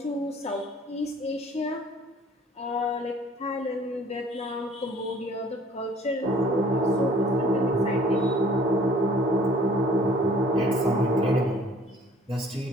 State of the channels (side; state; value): both; normal; correlation 0.53